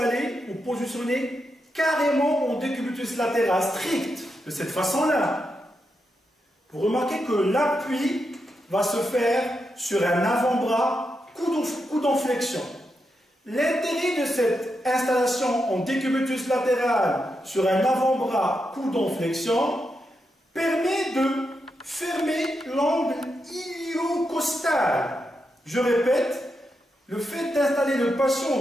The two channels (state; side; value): normal; both; correlation 0.85